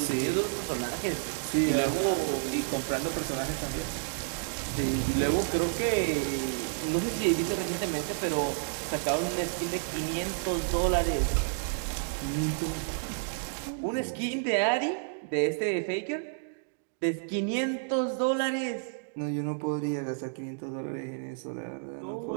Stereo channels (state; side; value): silent; left; digital silence